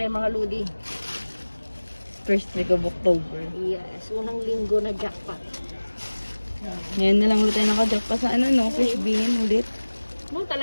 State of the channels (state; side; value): inverted; both; correlation -1.00